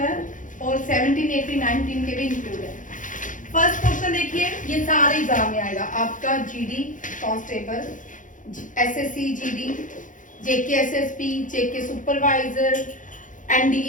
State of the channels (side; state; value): right; late; 0.38 ms